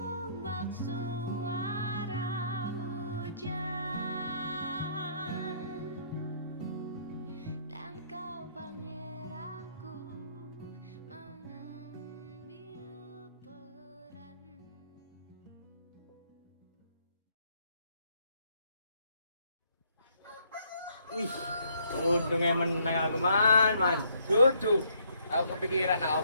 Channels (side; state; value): both; inverted; correlation -0.67